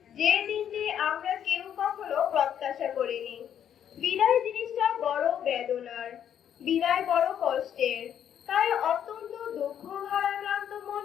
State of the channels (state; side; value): quieter; right; 9.5 dB